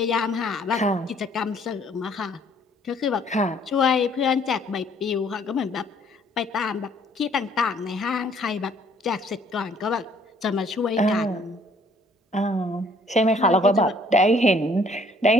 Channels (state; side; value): normal; both; correlation 0.61